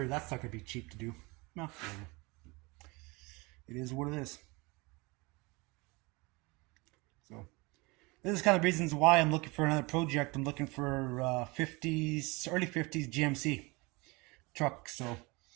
that's not gonna be cheap to do. No, whatever. It is what it is. So this is kind of reasons why I'm looking for another project. I'm looking for early 50s GMC truck. So,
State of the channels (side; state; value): left; quieter; 25.7 dB